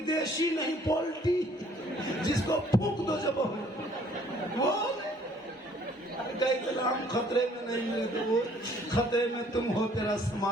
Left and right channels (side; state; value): both; normal; correlation 0.59